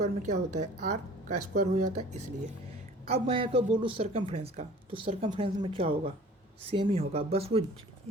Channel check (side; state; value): both; normal; correlation 0.47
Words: क्या होता है, r का स्क्वायर हो जाता है, इसलिए। अब मैं अगर बोलूँ सर्कमफ्रेंस का, तो सर्कमफ्रेंस में क्या होगा, सेम ही होगा, बस वो